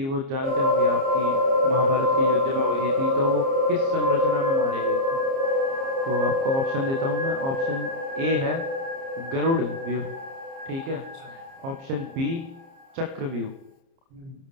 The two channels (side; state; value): left; late; 30 ms